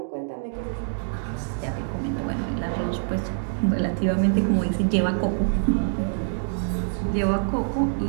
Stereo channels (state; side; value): silent; left; digital silence